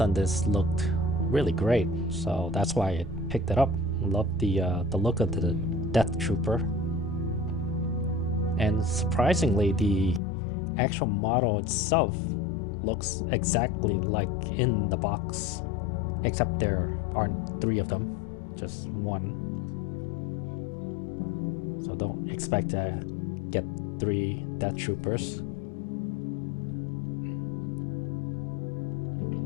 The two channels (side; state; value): right; drops out; at 10.2 s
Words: on this looked really great, so that's why I picked it up. Love the look of the Death Trooper. And surprisingly, the actual model itself looks exactly like in the box, except there aren't three of them, just one. So don't expect to get three Death Troopers.